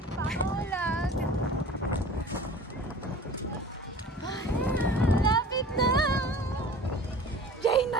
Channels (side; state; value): both; normal; correlation 0.42